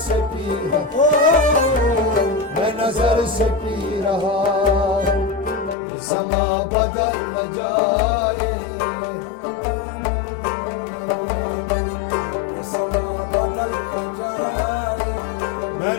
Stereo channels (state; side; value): drops out; right; at 5.8 s